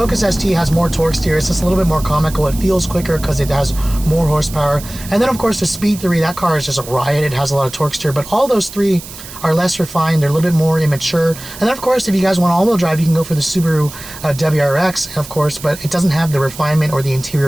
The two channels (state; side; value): noise; right; hiss, 14 dB below the sound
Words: ST has more torque steer. It's just a little bit more comical. It feels quicker because it has more horsepower. And then of course the Speed 3, that car is just a riot. It has a lot of torque steer, but all those three are less refined. They're a little bit more immature. And then of course, if you guys want all-wheel drive, you can go for the Subaru WRX, of course, but it doesn't have the refinement or the